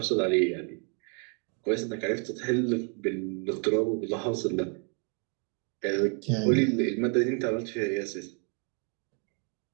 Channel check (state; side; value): quieter; left; 39.3 dB